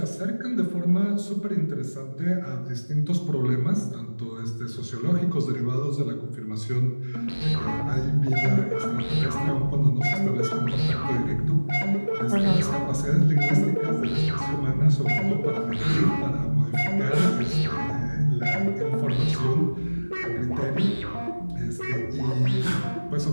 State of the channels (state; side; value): inverted; both; correlation -1.00